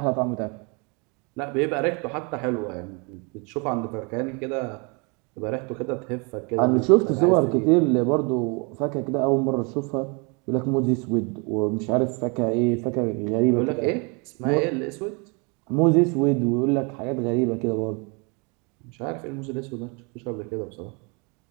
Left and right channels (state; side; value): quieter; left; 32.1 dB